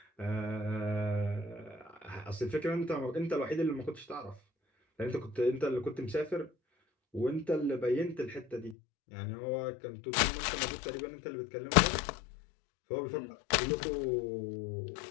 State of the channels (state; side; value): drops out; right; at 8.8 s